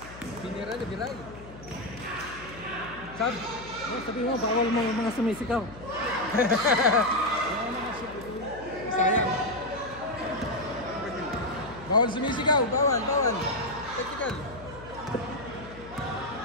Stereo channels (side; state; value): left; noise; hum, 16 dB below the sound